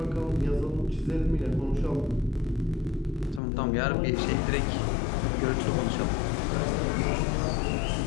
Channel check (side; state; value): right; drops out; at 3.4 s